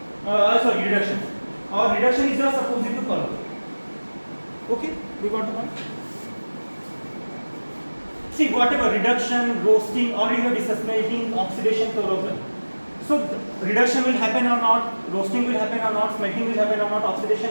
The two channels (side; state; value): both; inverted; correlation -1.00